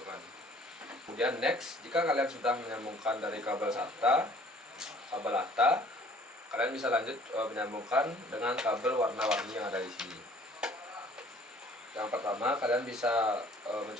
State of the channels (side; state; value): both; normal; correlation 0.55